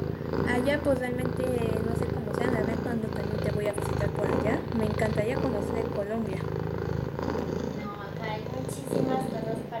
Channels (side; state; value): both; identical; correlation 1.00